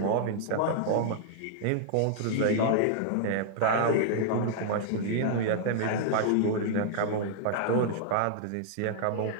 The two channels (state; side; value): different; both; correlation -0.01